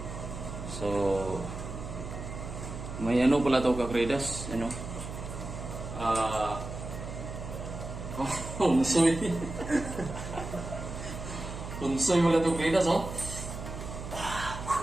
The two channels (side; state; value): right; noise; hum, 8 dB below the sound